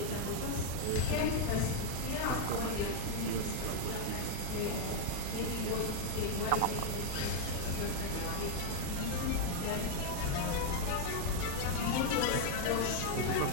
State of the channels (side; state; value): both; different; correlation 0.01